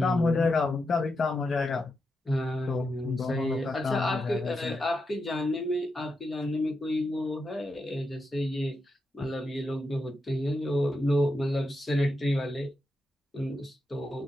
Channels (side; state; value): both; normal; correlation 0.86